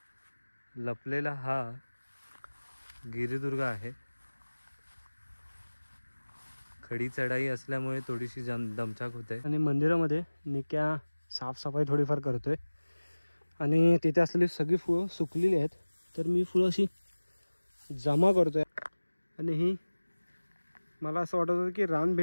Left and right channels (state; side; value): inverted; both; correlation -1.00